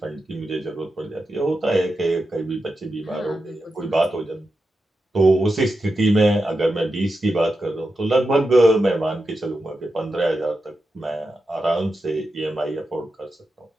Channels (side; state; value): both; normal; correlation 0.89